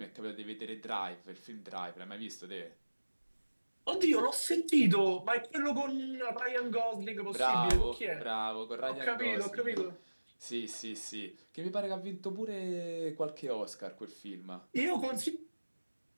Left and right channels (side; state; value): both; inverted; correlation -1.00